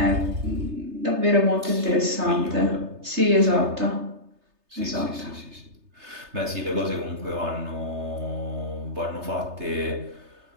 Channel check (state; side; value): late; left; 3.3 ms